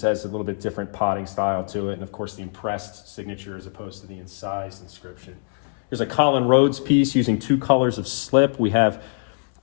a little bit different potting style to it, and of course the impressed signature as opposed to the incised inscription. Here's a Colin Rhodes piece using 2 colors of slip. We have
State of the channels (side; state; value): right; silent; digital silence